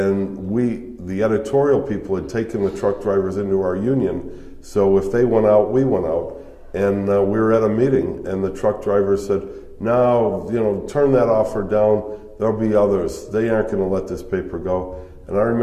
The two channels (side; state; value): both; identical; correlation 1.00